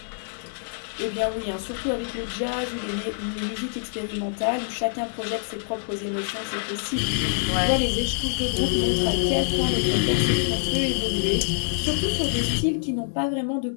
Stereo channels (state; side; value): silent; right; 57 dB below the other